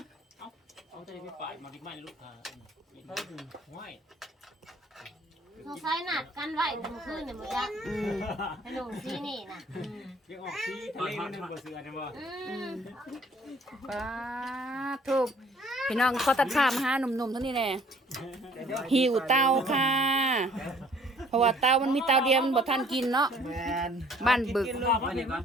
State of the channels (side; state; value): both; normal; correlation 0.57